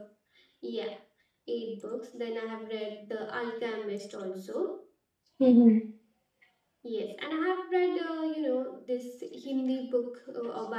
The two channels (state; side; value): identical; both; correlation 1.00